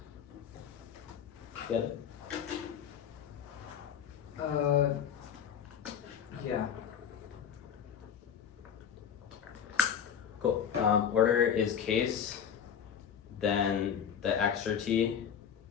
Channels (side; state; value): right; quieter; 8.2 dB